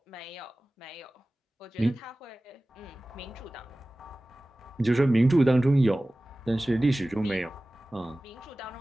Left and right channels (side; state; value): both; normal; correlation 0.97